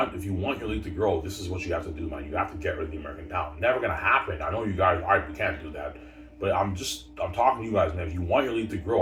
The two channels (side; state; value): both; identical; correlation 1.00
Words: your league to grow, this is what you have to do, man. You have to get rid of the American talent. Never gonna happen. I know you guys, we can't do that. But I'm talking to you guys, man. If you want your league to